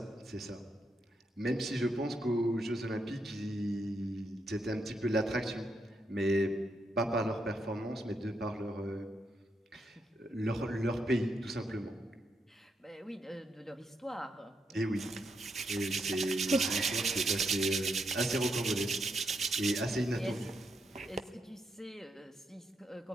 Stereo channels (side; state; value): both; normal; correlation 0.80